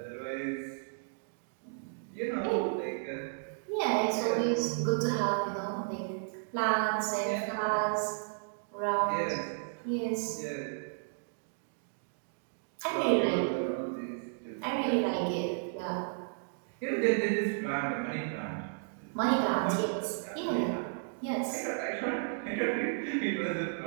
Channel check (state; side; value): silent; left; digital silence